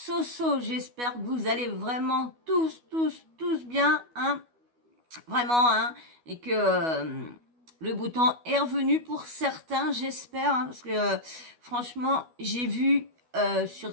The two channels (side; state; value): left; late; 12 ms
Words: j'espère que vous allez vraiment tous bien, hein, vraiment, hein, et que le beau temps est revenu pour certains, j'espère, hein, parce que franchement, j'ai vu